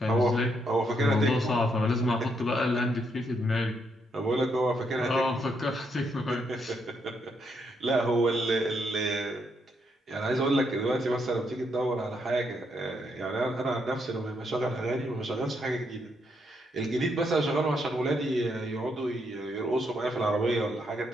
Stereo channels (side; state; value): both; normal; correlation 0.76